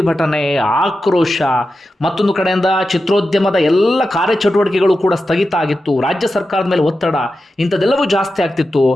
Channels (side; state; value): both; normal; correlation 0.91